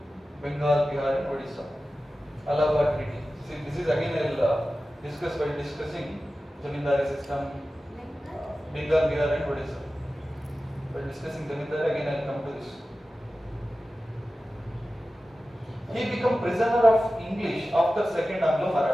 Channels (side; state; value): both; normal; correlation 0.95